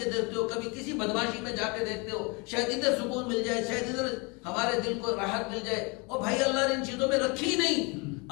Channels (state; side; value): quieter; right; 29.7 dB